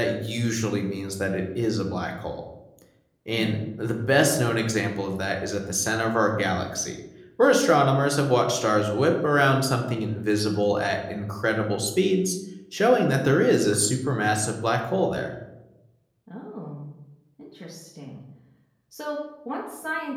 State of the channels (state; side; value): identical; both; correlation 1.00